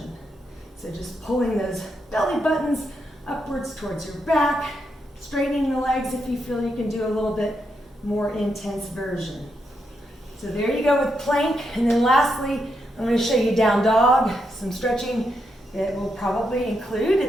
So just pulling those belly buttons upwards towards your back, straightening the legs if you feel you can do a little bit more intense version. So there you go with plank. And then lastly, I'm going to show you down dog, some stretching that we'll probably include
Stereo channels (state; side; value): normal; both; correlation 0.82